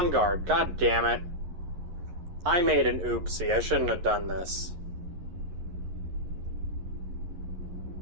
Guard. God damn it. I made an oopsie. I shouldn't have done this.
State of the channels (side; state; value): left; late; 11 ms